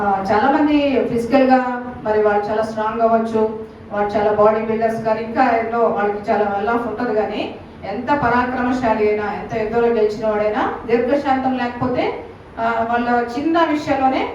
చాలా మంది ఫిజికల్ గా మరి వాళ్ళు చాలా స్ట్రాంగ్ అవ్వచ్చు, వాళ్ళు చాలా బాడీ బిల్డర్స్ కానీ ఇంకా ఎన్నో వాళ్ళకి చాలా వెల్ ఆఫ్ ఉంటుంది. కానీ ఎంత పరాక్రమశాలి అయినా, ఎంత యుద్ధంలో గెలిచిన వాడైనా దీర్ఘశాంతం లేకపోతే వాళ్ళ చిన్న విషయంలోనే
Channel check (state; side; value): identical; both; correlation 1.00